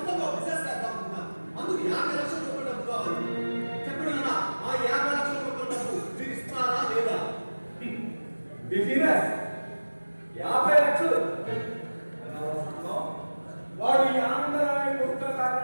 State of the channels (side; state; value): both; inverted; correlation -1.00